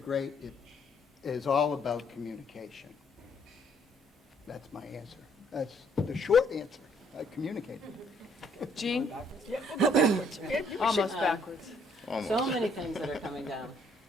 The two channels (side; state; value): both; normal; correlation 0.66